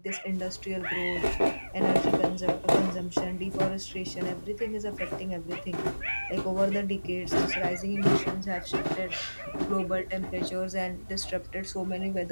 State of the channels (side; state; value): both; inverted; correlation -1.00